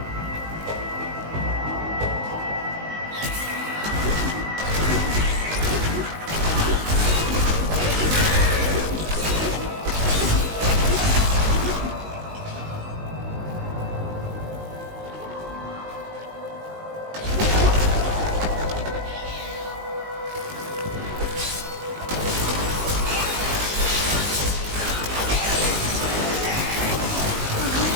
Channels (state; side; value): late; left; 19 ms